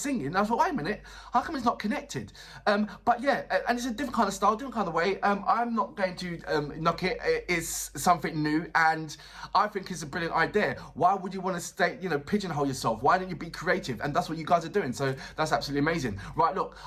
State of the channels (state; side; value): identical; both; correlation 1.00